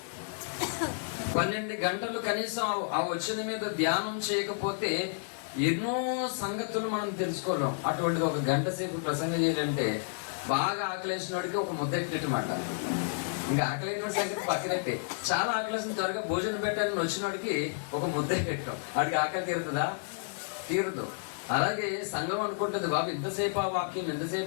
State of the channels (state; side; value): silent; right; digital silence